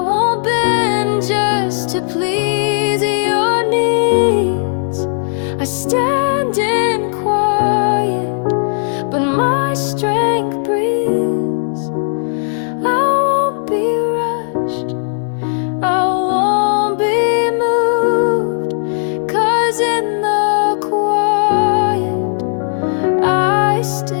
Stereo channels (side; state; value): right; silent; 62 dB below the other